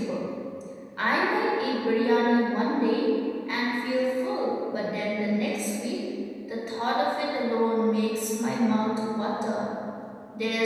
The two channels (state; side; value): identical; both; correlation 1.00